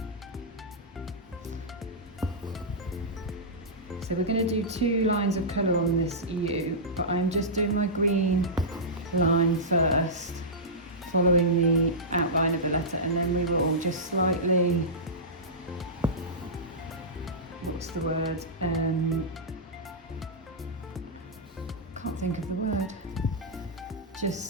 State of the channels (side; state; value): both; normal; correlation -0.15